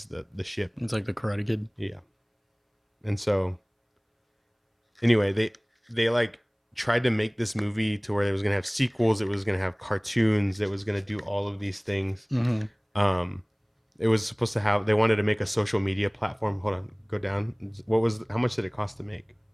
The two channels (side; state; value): both; identical; correlation 1.00